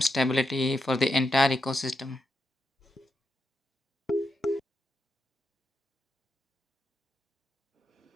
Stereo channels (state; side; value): normal; both; correlation 0.85